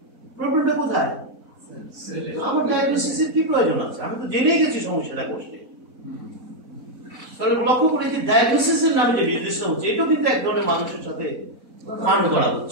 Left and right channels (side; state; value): left; late; 4.1 ms